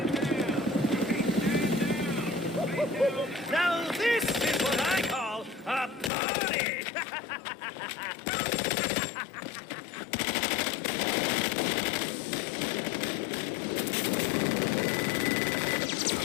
Now this is what I call a party!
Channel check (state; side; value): drops out; right; at 6.1 s